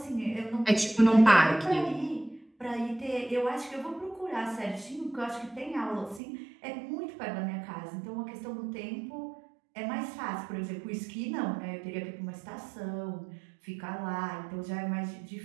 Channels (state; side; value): drops out; left; at 6.2 s